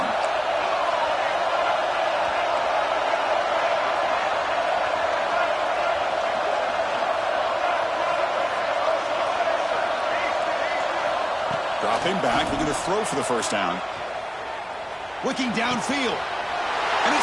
Dropping back, looking to throw for the first down. Looking downfield. And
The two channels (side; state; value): both; identical; correlation 1.00